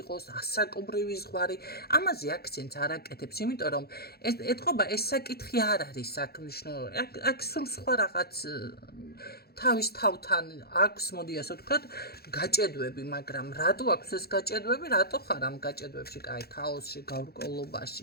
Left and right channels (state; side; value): late; right; 0.46 ms